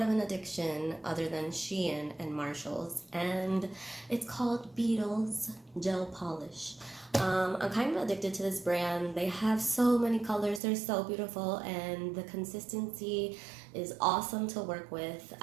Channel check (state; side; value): drops out; left; at 10.6 s